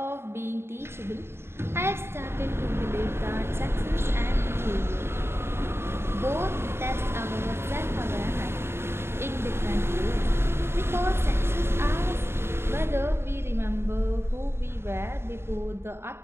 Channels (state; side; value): late; left; 0.12 ms